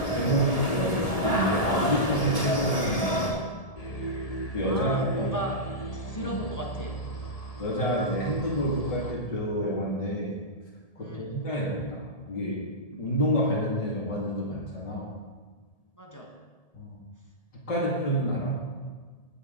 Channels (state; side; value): late; right; 1.7 ms